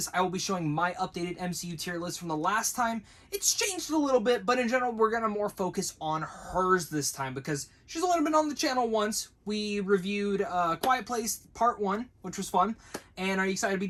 I will be showing my updated MCU tier list from the last time. It's changed a little bit, but in general, we're going to more focus on hers this time because she's only been on the channel once. We reviewed Quiet Place Part 1, which was fun. And are you excited to be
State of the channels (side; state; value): both; identical; correlation 1.00